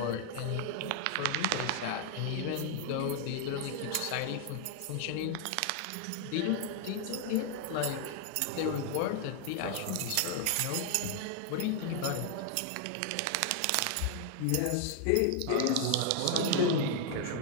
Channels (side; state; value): both; different; correlation 0.00